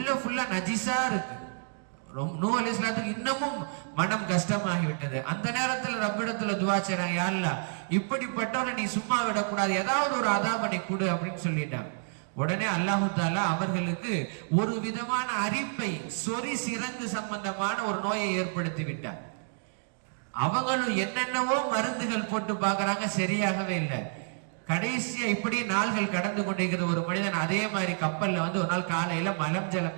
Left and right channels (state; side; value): silent; left; digital silence